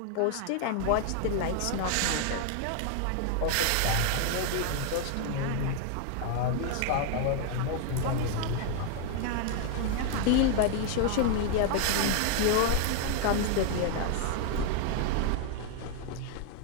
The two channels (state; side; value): different; both; correlation 0.00